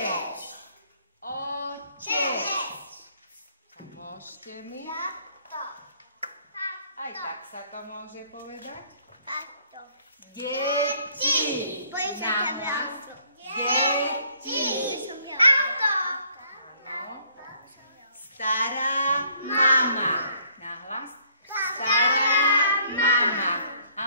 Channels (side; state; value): both; inverted; correlation -0.63